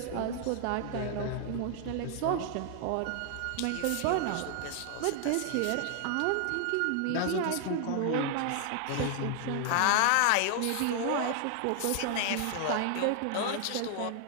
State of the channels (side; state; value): both; different; correlation 0.00